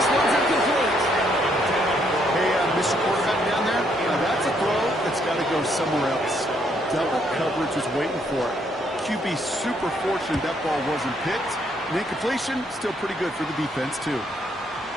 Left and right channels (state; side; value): normal; both; correlation 0.71